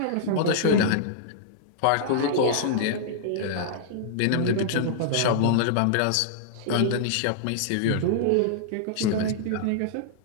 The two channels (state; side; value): different; both; correlation -0.02